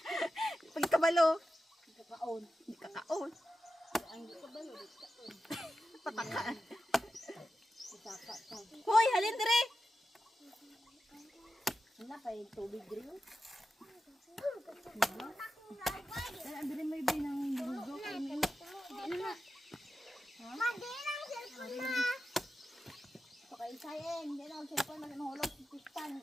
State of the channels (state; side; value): normal; both; correlation 0.91